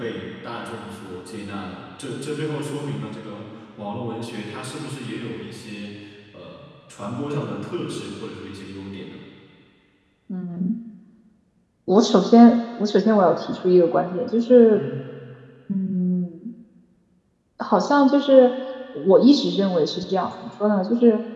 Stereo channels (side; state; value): both; identical; correlation 1.00